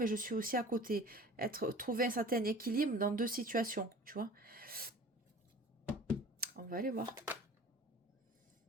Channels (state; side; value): normal; both; correlation 0.43